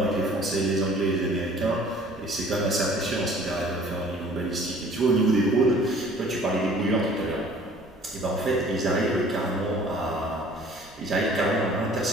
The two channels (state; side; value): normal; both; correlation 0.52